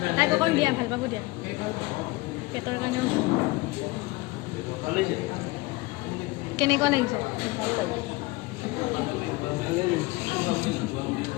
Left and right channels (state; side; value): quieter; right; 22.5 dB